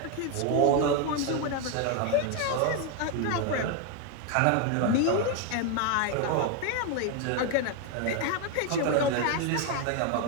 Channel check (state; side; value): different; both; correlation 0.01